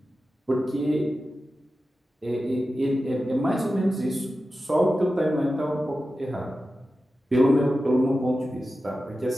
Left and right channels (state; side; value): normal; both; correlation 0.93